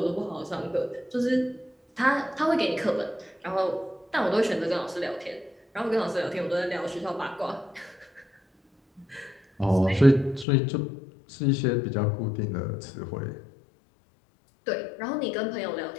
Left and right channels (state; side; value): drops out; right; at 10.5 s